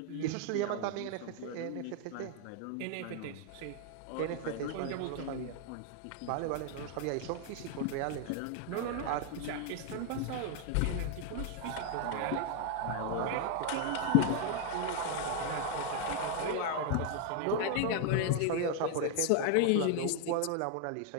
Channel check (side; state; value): both; different; correlation 0.00